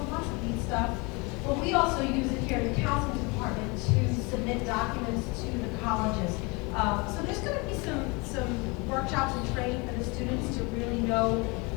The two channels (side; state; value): right; quieter; 28.0 dB